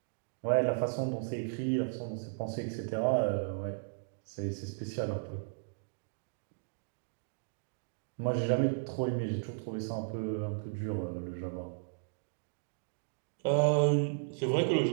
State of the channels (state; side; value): silent; left; digital silence